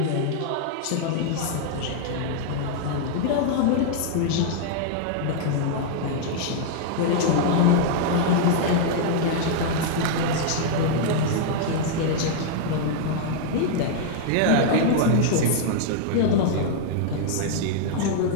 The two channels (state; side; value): different; both; correlation -0.01